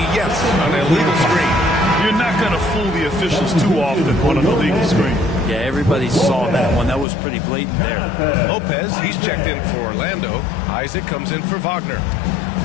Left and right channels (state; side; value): drops out; right; at 7.1 s